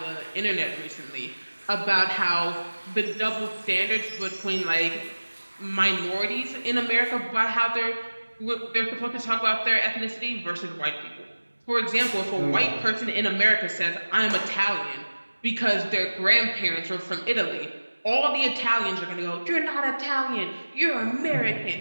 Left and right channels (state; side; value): inverted; both; correlation -1.00